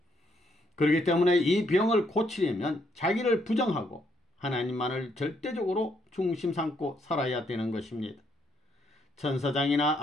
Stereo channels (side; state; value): both; normal; correlation 0.73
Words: 그렇기 때문에 이 병을 고치려면 자기를 부정하고 하나님만을 절대적으로 중심 삼고 살아야 되는 것입니다. 천사장이나